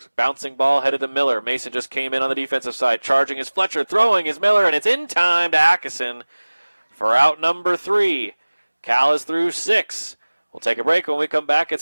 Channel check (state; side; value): inverted; both; correlation -1.00